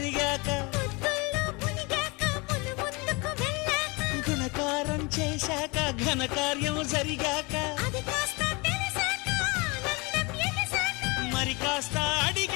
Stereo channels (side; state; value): right; quieter; 27.3 dB